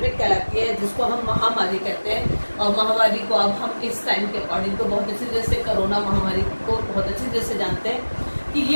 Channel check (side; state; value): both; inverted; correlation -1.00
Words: कहलाती है, जिसको हम महामारी कहते हैं। और महामारी को अब हम इस टाइम के अकॉर्डिंग तो बहुत अच्छी तरह से कोरोना महामारी को बहुत अच्छी तरह से जानते हैं कि